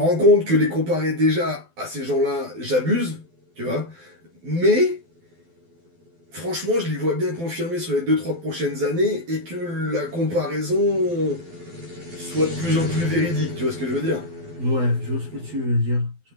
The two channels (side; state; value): left; late; 12 ms